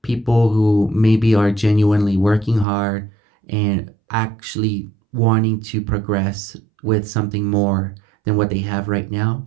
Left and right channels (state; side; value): drops out; left; at 2.7 s